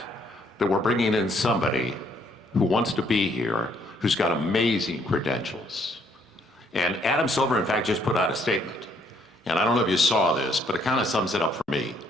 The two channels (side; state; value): both; normal; correlation 0.68